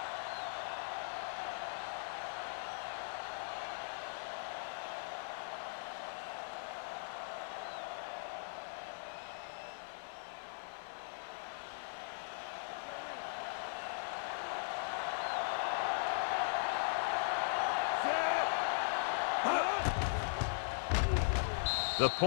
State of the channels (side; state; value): right; silent; 52 dB below the other